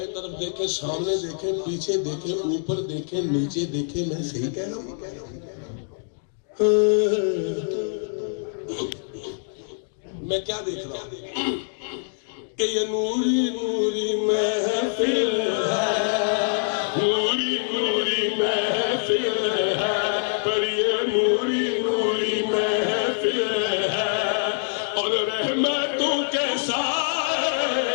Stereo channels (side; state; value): right; silent; digital silence